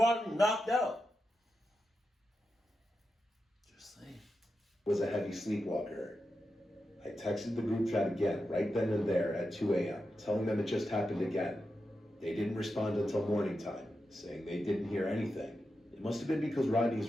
knocked out? Just saying. Was a heavy sleepwalker. I texted the group chat again, right then and there at 2 a.m., telling them it just happened again. They didn't respond until morning time, saying they didn't hear anything. It must have been because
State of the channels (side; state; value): both; normal; correlation 0.89